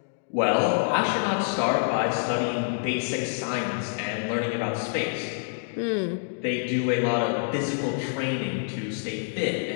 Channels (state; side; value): silent; right; digital silence